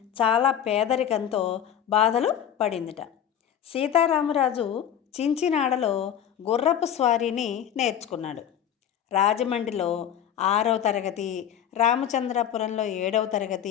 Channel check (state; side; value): quieter; right; 9.7 dB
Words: చాలా పేదరికంతో బాధలు పడిందిట. సీతారామరాజు చించినాడలో గుర్రపు స్వారీని నేర్చుకున్నాడు. రాజమండ్రిలో 6వ తరగతి, రామచంద్రపురంలో 7వ